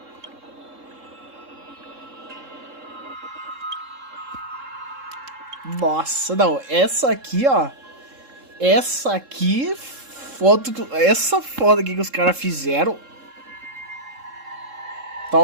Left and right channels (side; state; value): left; late; 3.7 ms